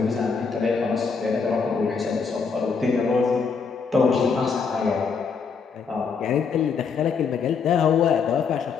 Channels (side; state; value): right; quieter; 5.5 dB